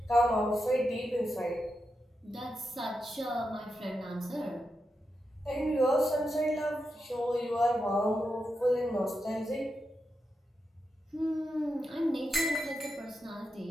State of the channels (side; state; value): both; normal; correlation 0.87